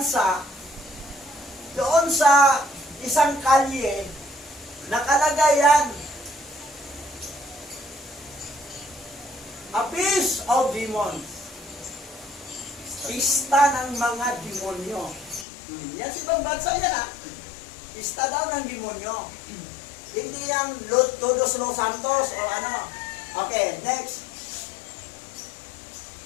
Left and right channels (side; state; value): right; drops out; at 15.5 s